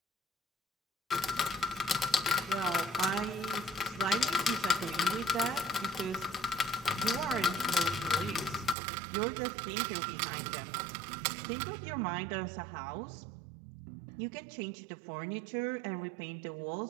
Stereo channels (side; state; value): left; drops out; at 8.8 s